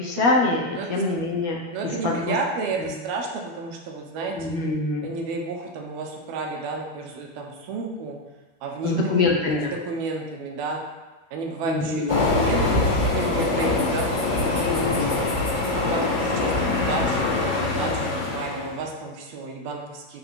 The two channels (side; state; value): left; late; 12 ms